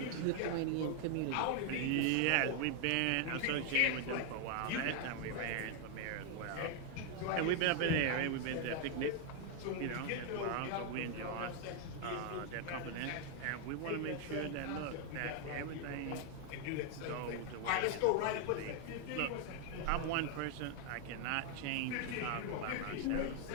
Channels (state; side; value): different; both; correlation 0.00